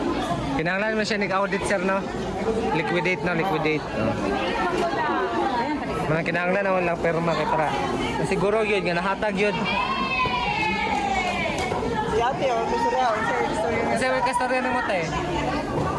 Kinahanglan man siya nig-audit sir no. Liquidate. No? Mga kinahanglan na lang pirma kay para. Siguro yun nga nahatag yun. Si ate, gusto rin ako. Kasi may kastorya ng mata eh.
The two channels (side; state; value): both; identical; correlation 1.00